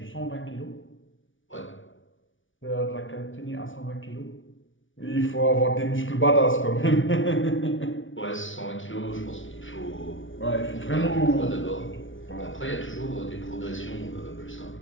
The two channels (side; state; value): right; late; 0.56 ms